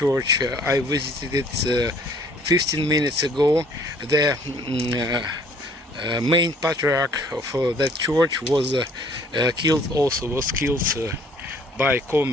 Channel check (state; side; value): normal; both; correlation 0.58